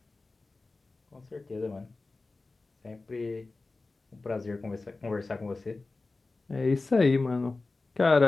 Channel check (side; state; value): right; quieter; 3.5 dB